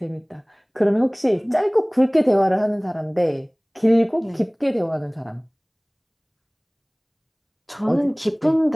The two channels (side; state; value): both; identical; correlation 1.00